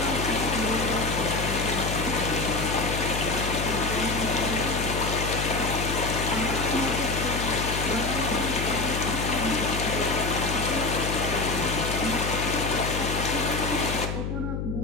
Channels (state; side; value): noise; left; hum, 3 dB below the sound